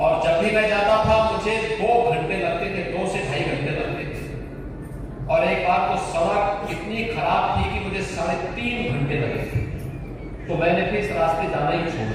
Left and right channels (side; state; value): both; identical; correlation 1.00